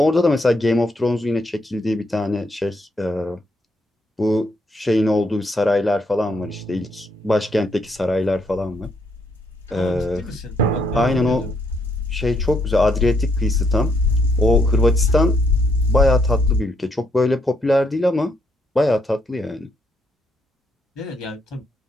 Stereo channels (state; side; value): normal; both; correlation 0.74